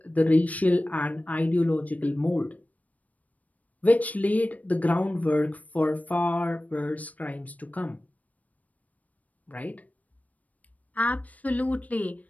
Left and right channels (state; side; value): late; right; 0.072 ms